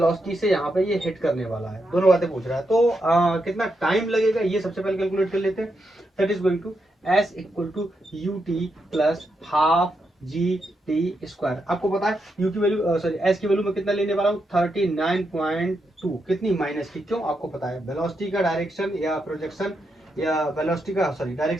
से यहाँ पे ये हिट करने वाला है, दोनों बातें पूछ रहा है। तो कितना टाइम लगेगा ये सबसे पहले कैलकुलेट कर लेते हैं। That is going to s equal to u t plus half g t square. आपको पता है यू की वैल्यू सॉरी एस की वैल्यू में कितना लेने वाला हूँ 39.2, कितनी माइनस की, क्यों आपको पता है वेलोसिटी का डायरेक्शन या प्रोजेक्शन या वेलोसिटी का सॉरी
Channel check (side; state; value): both; normal; correlation 0.83